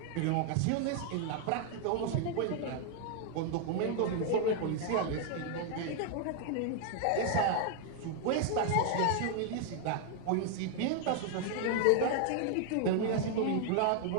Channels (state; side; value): different; both; correlation 0.00